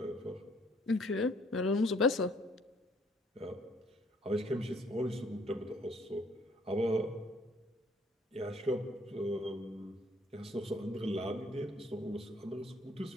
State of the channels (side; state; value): both; normal; correlation 0.63